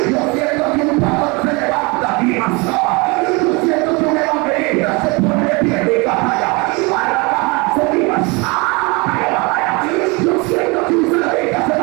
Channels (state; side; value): quieter; left; 27.7 dB